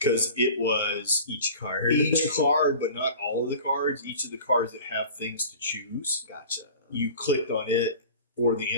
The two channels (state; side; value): inverted; both; correlation -0.41